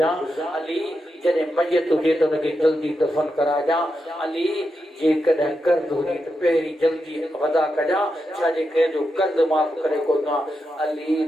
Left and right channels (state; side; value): normal; both; correlation 0.86